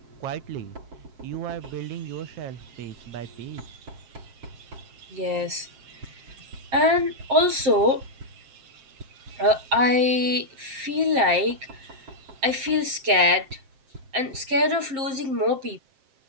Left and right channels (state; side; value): late; left; 7.6 ms